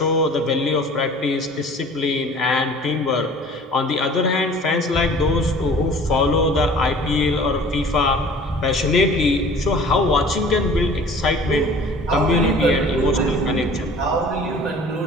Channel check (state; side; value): normal; both; correlation 0.47